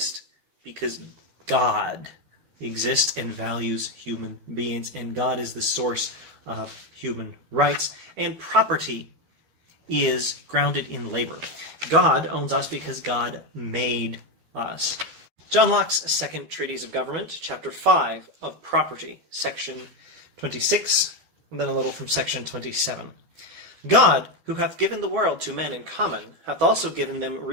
because God exists and values human beings, and God is the source of human rights. And property is grounded in labor. God owns us because God made us. John Locke's second Treatise of Government, chapter 5 of Property, section 26, and then a little from section 27. God, who hath given the world to men in common, hath also given them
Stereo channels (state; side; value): late; left; 12 ms